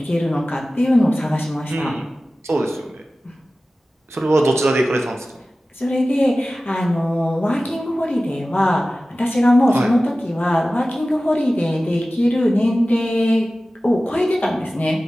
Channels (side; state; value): both; normal; correlation 0.96